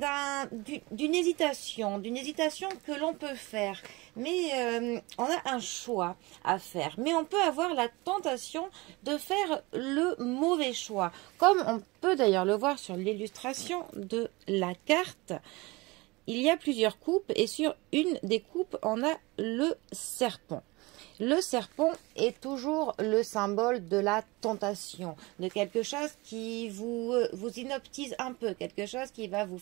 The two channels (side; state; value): left; quieter; 23.6 dB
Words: d'une hésitation que l'on peut faire. Mais on a un choix à faire. Mais on peut avoir la tentation de faire le mauvais choix. Comme on peut d'ailleurs le voir sur l'illustration de la carte. Il y a plusieurs coupes et sur une des coupes, on a le serpent. Le serpent est toujours le symbole de la tentation, de quelque chose qui vous inoptise un peu, quelque chose qui va vous